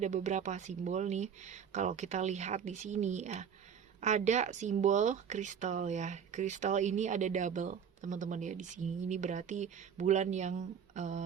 beberapa simbol nih. Kalau kita lihat di sini ya, ada simbol kristal ya. Kristal ini ada double teman-teman ya di sini. Ini berarti bulan yang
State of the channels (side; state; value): left; quieter; 7.6 dB